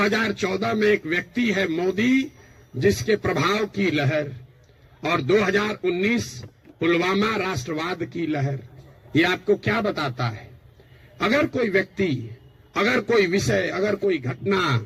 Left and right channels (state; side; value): identical; both; correlation 1.00